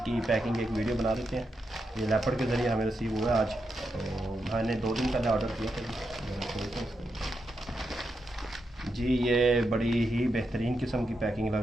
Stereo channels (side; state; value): both; normal; correlation 0.85